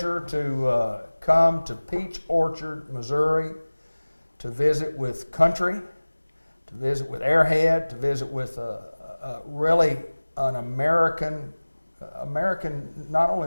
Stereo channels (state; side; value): inverted; both; correlation -1.00